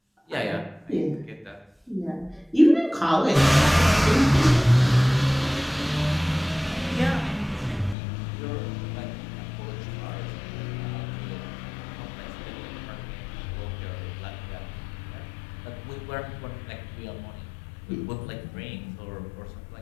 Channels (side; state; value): right; drops out; at 8.0 s